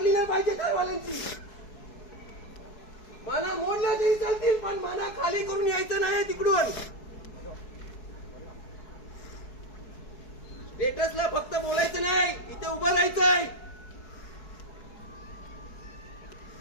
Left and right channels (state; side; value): late; right; 4.6 ms